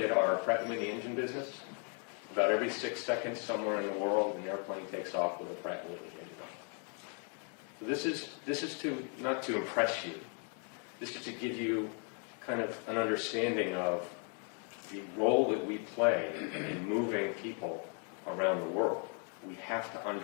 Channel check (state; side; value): quieter; right; 39.7 dB